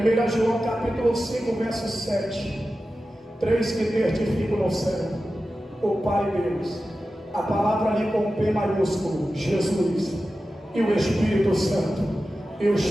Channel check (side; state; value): both; normal; correlation 0.93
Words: João capítulo 5, verso 7. Três que testificam no céu: o Pai Deus, a palavra ali com P maiúsculo, Jesus, e o Espírito Santo, e